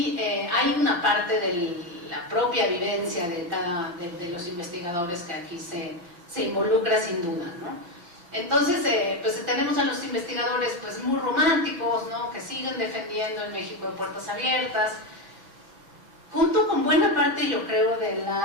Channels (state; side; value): late; left; 5.9 ms